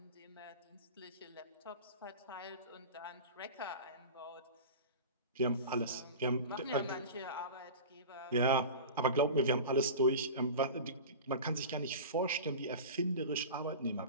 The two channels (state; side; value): inverted; both; correlation -0.33